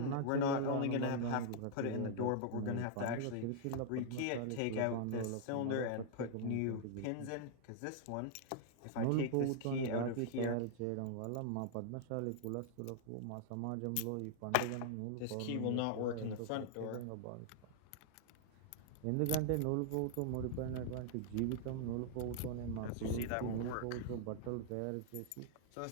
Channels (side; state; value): both; different; correlation -0.01